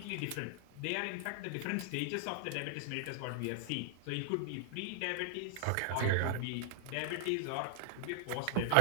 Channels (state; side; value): different; both; correlation 0.00